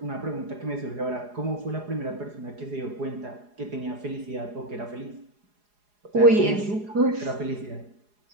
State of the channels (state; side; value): late; left; 4.8 ms